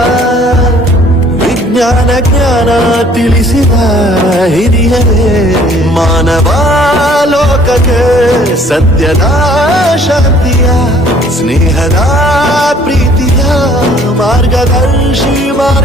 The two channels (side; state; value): both; normal; correlation 0.57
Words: ವಿಜ್ಞಾನ ಜ್ಞಾನ ತಿಳಿಸಿದ ಹಿರಿಯರೇ ಮಾನವ ಲೋಕಕ್ಕೆ ಸತ್ಯದ ಶಾಂತಿಯ ಸ್ನೇಹದ ಪ್ರೀತಿಯ ಮಾರ್ಗದರ್ಶಿ